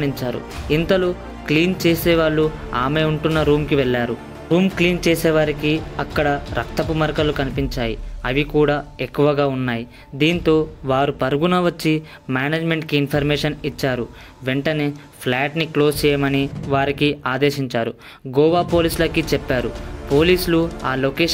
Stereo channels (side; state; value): both; identical; correlation 1.00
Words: ఇంతలో క్లీన్ చేసేవాళ్ళు ఆమె ఉంటున్న రూమ్కి వెళ్ళారు. రూమ్ క్లీన్ చేసేవారికి అక్కడ రక్తపు మరకలు కనిపించాయి. అవి కూడా ఎక్కువగా ఉన్నాయి. దీంతో వారు పరుగున వచ్చి మేనేజ్మెంట్కి ఇన్ఫర్మేషన్ ఇచ్చారు. వెంటనే ఫ్లాట్ని క్లోజ్ చేయమని వారికి ఆదేశించారు. గోవా పోలీసులకి చెప్పారు. పోలీసులు ఆ